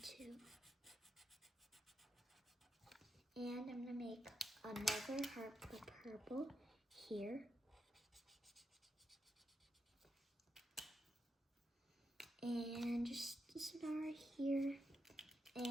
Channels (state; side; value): normal; both; correlation 0.84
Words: And I'm gonna make another heart with purple here. And just a star here.